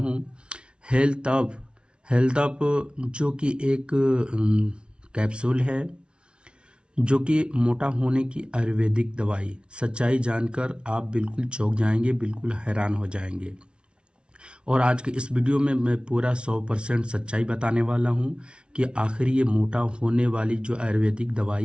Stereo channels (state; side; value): late; left; 0.057 ms